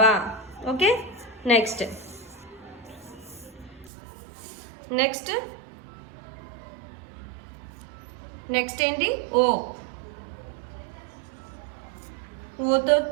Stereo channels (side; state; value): left; drops out; at 3.9 s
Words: ఓకే, నెక్స్ట్ నెక్స్ట్ నెక్స్ట్ ఏంటి? ఓ. ఓతో